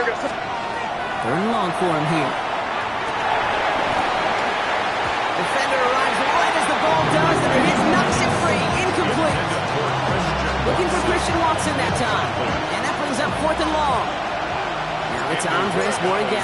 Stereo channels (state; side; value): identical; both; correlation 1.00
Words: and long for him here. Defender arrives right as the ball does, and the hit knocks it free. Incomplete. Looking for Christian Watson that time. And that brings up 4th and long. Now it's Andres Morgan